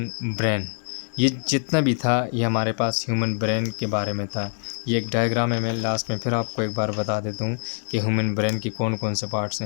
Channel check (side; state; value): right; silent; digital silence